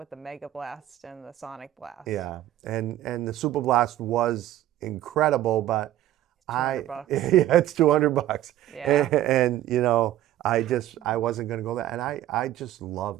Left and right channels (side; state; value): left; quieter; 13.4 dB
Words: the Mega Blast and the Sonic Blast. Yeah, and the Super Blast was incredible, but $200. Yeah, it's $200. Yeah. And I wasn't going to go there. And I just